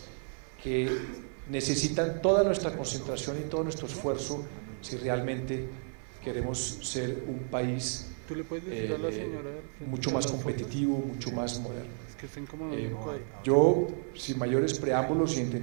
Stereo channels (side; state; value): left; silent; 56 dB below the other